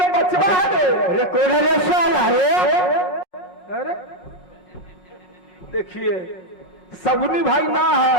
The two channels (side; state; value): right; late; 5.5 ms